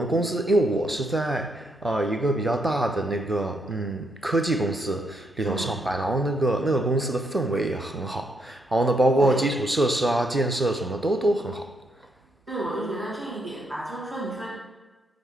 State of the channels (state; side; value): normal; both; correlation 0.76